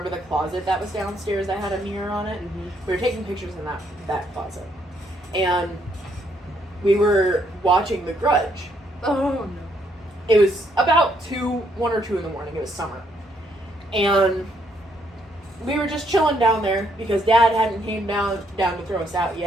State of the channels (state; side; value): normal; both; correlation 0.72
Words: the closet that was downstairs that had a mirror on it? Mm-hmm. We were taking pictures in that closet. And we were watching The Grudge. Oh, no. It was about 1 or 2 in the morning. It was summer. And we were just chilling down there because Dad hadn't came down to throw us out